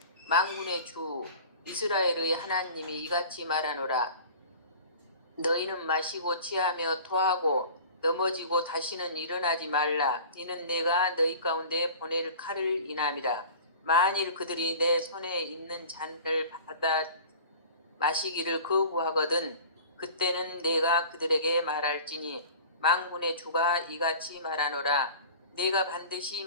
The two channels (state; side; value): inverted; both; correlation -0.40